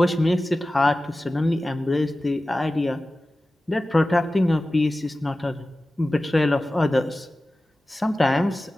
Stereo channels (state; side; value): normal; both; correlation 0.96